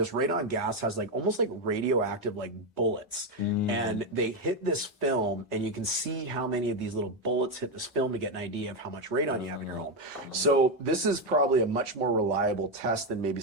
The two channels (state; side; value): normal; both; correlation 0.07